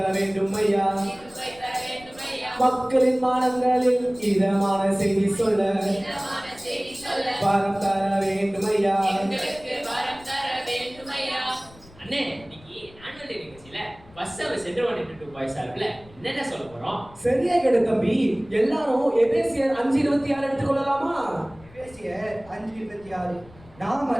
வேண்டும் ஐயா. மக்களின் மானங்களில் இதமான செய்தி சொல்ல வரம் தர வேண்டும் ஐயா. அண்ணே, இன்னைக்கு ஆனுவல் டே நிகழ்ச்சியில பஸ் அவர் சென்ட்ரல் 22 பாய்ஸ் சார்பில் என்னென்ன சொல்ல போறோம்? சரியா கேடு தம்பி. எல்லாரும் எபேசியர் 5:26 எடுத்துக்கொள்ளலாமா? எபேசியர் 5:26 நாம்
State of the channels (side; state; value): left; noise; rumble, 23 dB below the sound